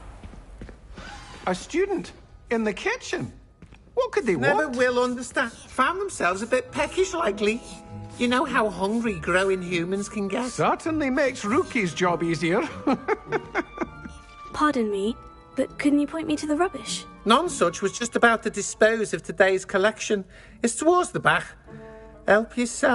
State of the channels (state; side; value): identical; both; correlation 1.00